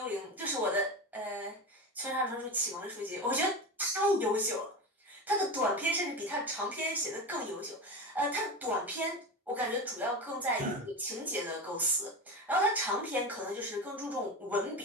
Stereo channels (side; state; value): both; normal; correlation 0.24